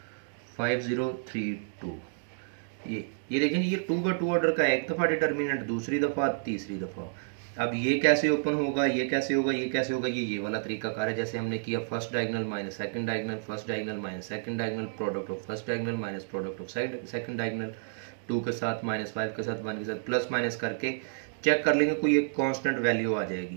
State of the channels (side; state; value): left; silent; digital silence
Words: 5 0 3 2। ये देखें ये 2 का 2 ऑर्डर का एक दफ़ा डिटर्मिनेंट, दूसरी दफ़ा, तीसरी दफ़ा। अब ये कैसे ओपन होगा, ये कैसे होगा, ये कैसे होगा, ये वाला तरीका कार है जैसे हमने किया first diagonal minus second diagonal, first diagonal minus second diagonal, product of first diagonal minus product of second diagonal, 2 के साथ -5 के साथ 1 के साथ प्लस माइनस करके चेक कर लेंगे, कोई एक कांस्टेंट वैल्यू आ